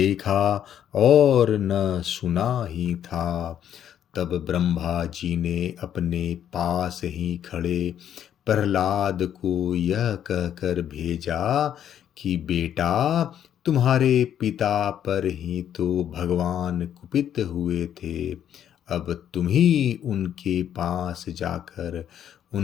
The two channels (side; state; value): right; quieter; 10.0 dB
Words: और न सुना ही था। तब ब्रह्मा जी ने अपने पास ही खड़े प्रहलाद को यह कहकर भेजा कि बेटा, तुम्हारे पिता पर ही तो भगवान कुपित हुए थे। अब तुम ही उनके पास जाकर